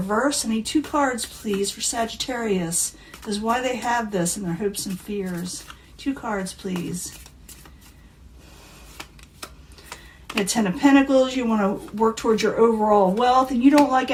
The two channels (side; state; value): both; identical; correlation 1.00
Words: I need 2 cards, please, for Sagittarius. This is why they have this in their hopes and fears. 2 cards, please. The 10 of Pentacles. You want to work towards your overall wealth. And you don't like